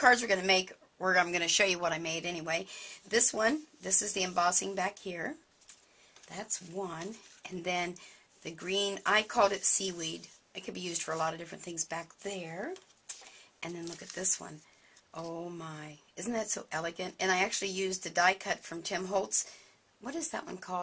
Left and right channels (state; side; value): identical; both; correlation 1.00